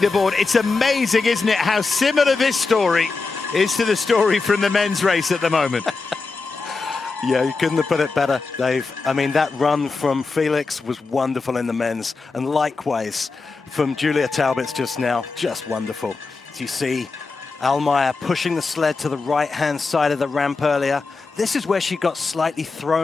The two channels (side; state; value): right; quieter; 4.2 dB